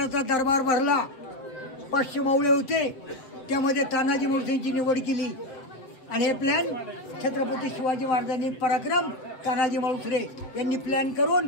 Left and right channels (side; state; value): right; late; 7.4 ms